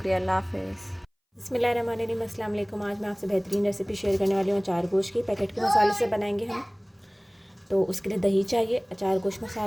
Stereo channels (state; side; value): identical; both; correlation 1.00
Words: अल्लाह हाफ़िज़। बिस्मिल्लाहिर्रहमानिर्रहीम। अस्सलाम वालेकुम। आज मैं आपसे बेहतरीन रेसिपी शेयर करने वाली हूँ अचार गोश्त की। पैकेट के मसाले से बनाएंगे हम। तो उसके लिए दही चाहिए, अचार गोश्त